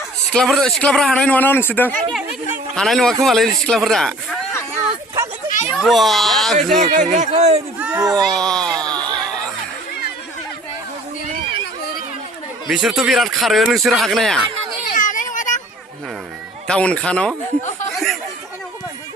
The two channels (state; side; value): normal; both; correlation 0.49